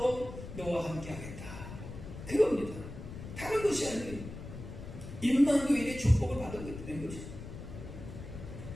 너와 함께 하겠다. 그겁니다. 다른 것이 아니에요. 임마누엘의 축복을 받은 것이죠.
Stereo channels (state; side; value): noise; left; rumble, 11 dB below the sound